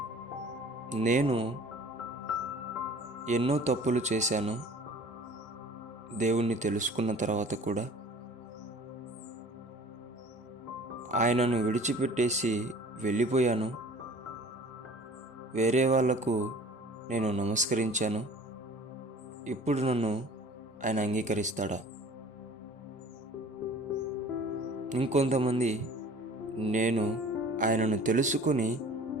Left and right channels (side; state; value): both; normal; correlation 0.47